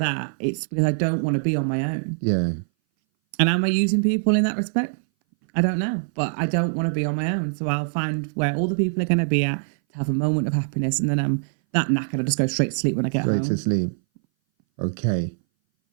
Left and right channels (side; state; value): left; silent; 60 dB below the other